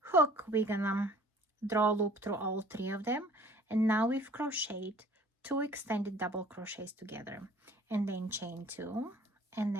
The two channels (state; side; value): normal; both; correlation 0.51